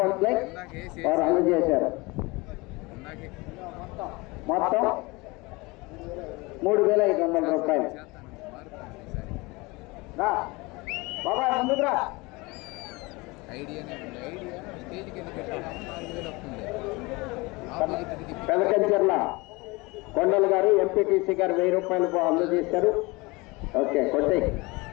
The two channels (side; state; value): right; quieter; 24.5 dB